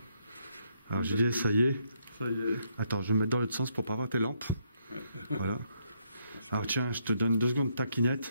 Alors JD, ça y est. Ça y est. Attends, je vais me mettre dans l'autre sens pour pas voir tes lampes. Ouais. Voilà. Alors tiens, je te donne 2 secondes de ta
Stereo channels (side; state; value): both; inverted; correlation -0.74